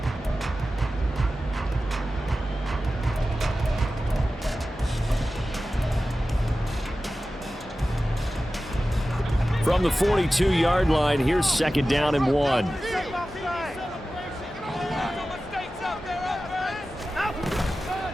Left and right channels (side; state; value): both; normal; correlation 0.94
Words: From the 42-yard line, here's 2nd down and 1.